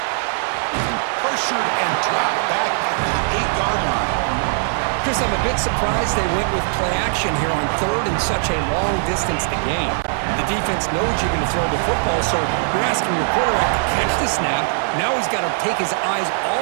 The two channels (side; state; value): left; silent; digital silence